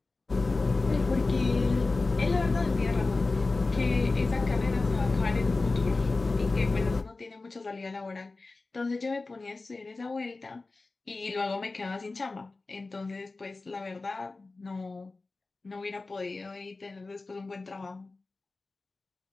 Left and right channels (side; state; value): right; quieter; 3.5 dB